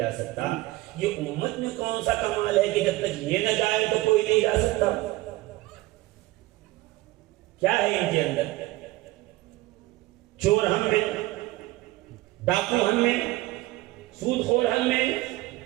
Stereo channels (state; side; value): quieter; left; 18.5 dB